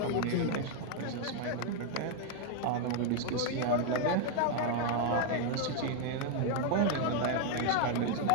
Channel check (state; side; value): different; both; correlation 0.01